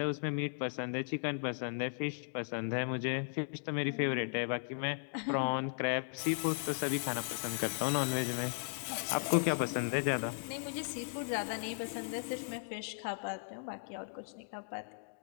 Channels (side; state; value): right; silent; digital silence